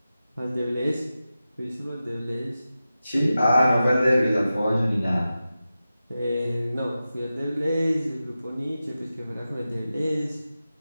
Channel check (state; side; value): inverted; both; correlation -0.93